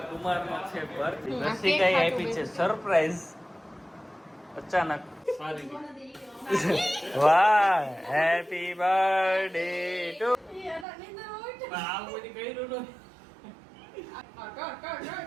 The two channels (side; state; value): left; drops out; at 10.9 s